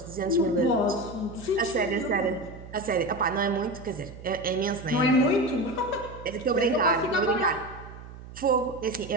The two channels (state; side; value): noise; right; hum, 15 dB below the sound